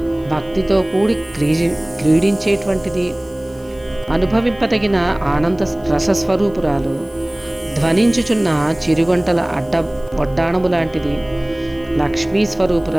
భక్తితో కూడి క్రీడించేటువంటిది. అనుభవింపదగిన ఆనంద రసస్వరూపురాలు. ధ్వనించుచున్న చిరుగంటల వడ్డాణము లాంటిది. లక్ష్మీ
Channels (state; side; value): noise; left; hiss, 28 dB below the sound